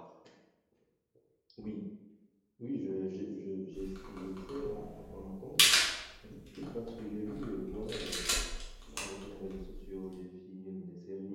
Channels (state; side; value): identical; both; correlation 1.00